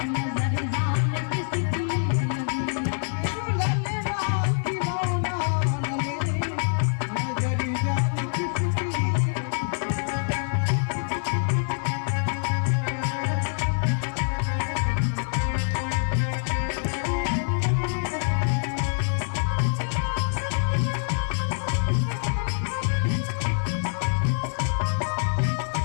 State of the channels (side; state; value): right; silent; 61 dB below the other